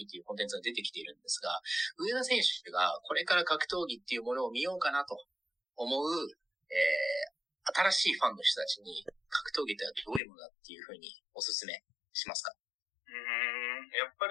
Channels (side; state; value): right; drops out; at 10.2 s